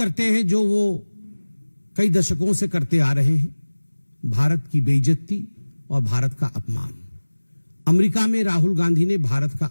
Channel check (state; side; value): inverted; both; correlation -1.00